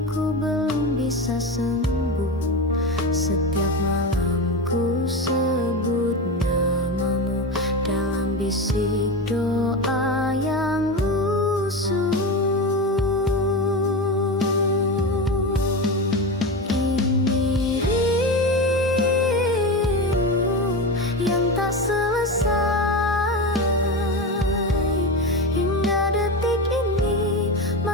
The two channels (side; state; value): both; normal; correlation 0.21